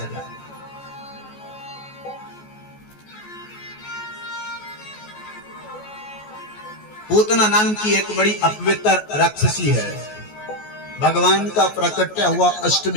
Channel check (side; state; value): right; late; 14 ms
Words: जाए। पूतना नाम की एक बड़ी अपवित्र राक्षसी है। भगवान का प्राकट्य हुआ